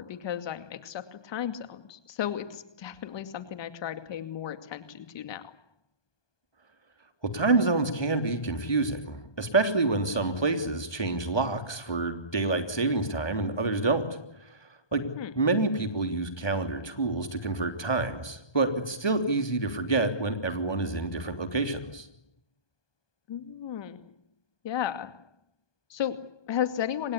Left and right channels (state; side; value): late; right; 1.2 ms